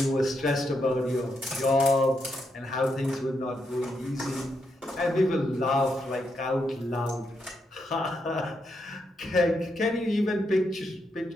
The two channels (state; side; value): normal; both; correlation 0.81